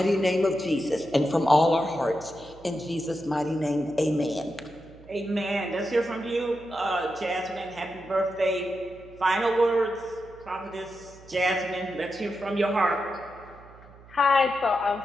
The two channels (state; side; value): noise; right; hum, 22 dB below the sound